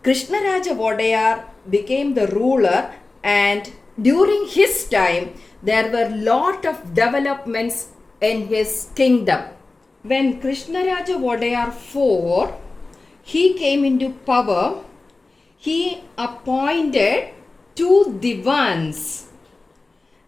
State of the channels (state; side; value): quieter; right; 3.4 dB